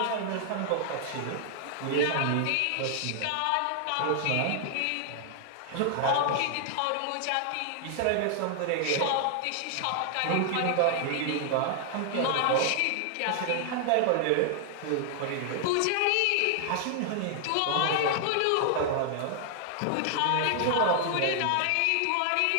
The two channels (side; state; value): both; different; correlation 0.00